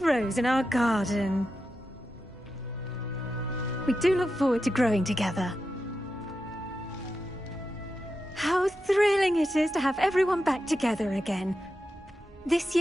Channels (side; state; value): both; normal; correlation 0.89